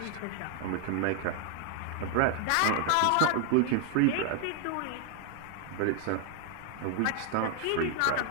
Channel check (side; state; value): both; different; correlation 0.00